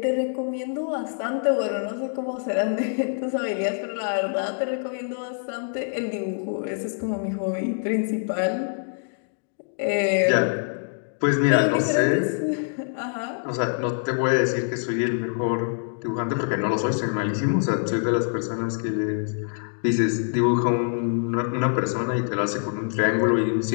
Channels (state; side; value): silent; right; digital silence